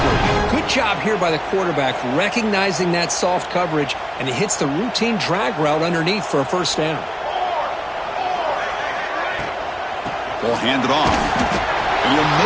Good job here by the quarterback recognizing that soft coverage, and he hits the routine drag route underneath for a first down. Ball handed off. And you'll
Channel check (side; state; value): both; identical; correlation 1.00